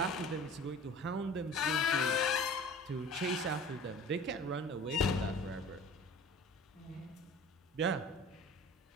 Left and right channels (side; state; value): both; normal; correlation 0.42